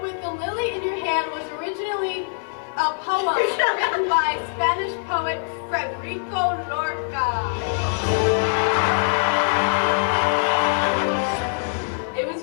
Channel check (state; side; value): silent; right; digital silence